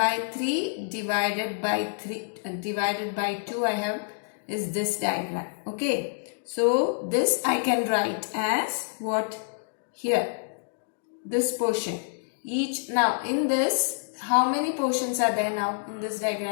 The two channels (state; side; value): silent; right; digital silence